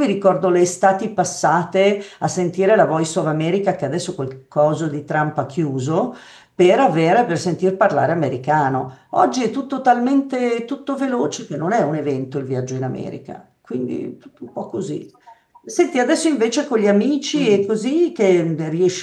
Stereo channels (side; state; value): both; identical; correlation 1.00